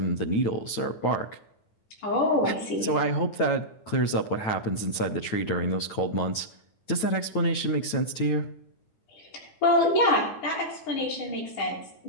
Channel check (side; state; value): right; late; 9.2 ms